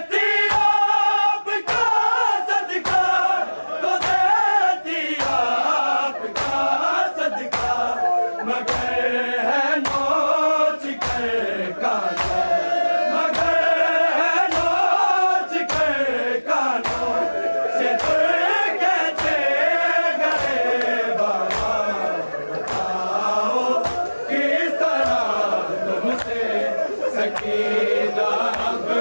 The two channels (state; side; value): inverted; both; correlation -1.00